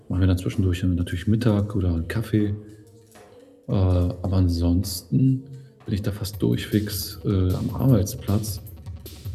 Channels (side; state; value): both; identical; correlation 1.00